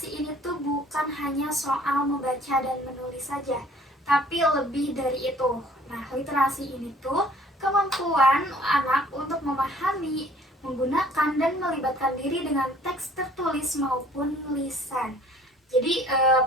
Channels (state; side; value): normal; both; correlation 0.55